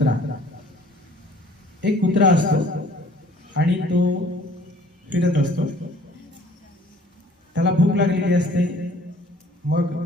एक कुत्रा असतो आणि तो फिरत असतो. त्याला भूक लागलेली असते. मग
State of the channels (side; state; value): both; normal; correlation 0.54